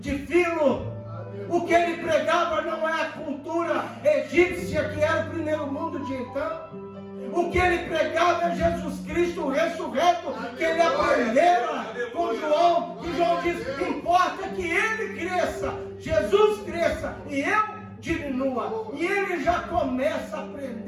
de Filo. O que ele pregava não é a cultura egípcia, que era o primeiro mundo de então. O que ele pregava é Jesus Cristo ressurreto, que ele aprendera com João. E João diz, importa que ele cresça, Jesus cresça e eu diminua. E ele já começa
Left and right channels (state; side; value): identical; both; correlation 1.00